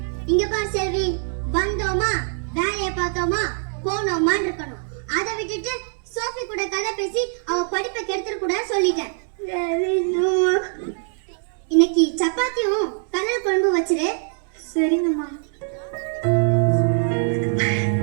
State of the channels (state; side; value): silent; left; 58 dB below the other